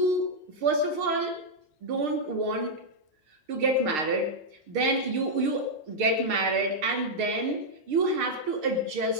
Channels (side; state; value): left; late; 6.5 ms